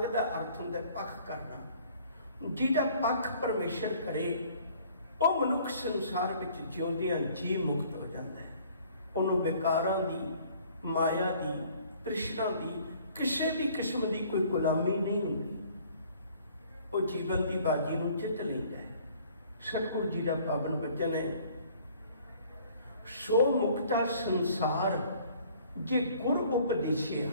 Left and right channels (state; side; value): inverted; both; correlation -0.56